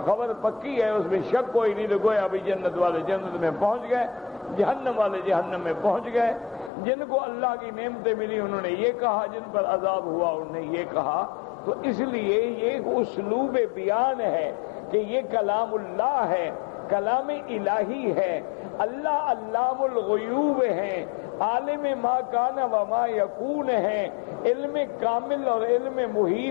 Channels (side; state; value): right; drops out; at 6.7 s